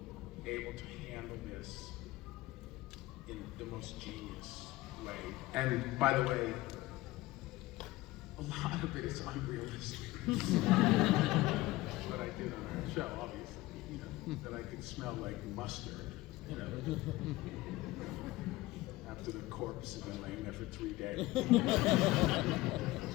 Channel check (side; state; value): right; quieter; 18.8 dB